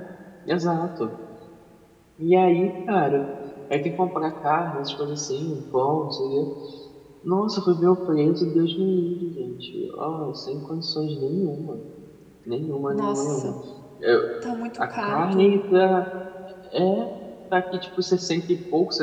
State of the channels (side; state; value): both; identical; correlation 1.00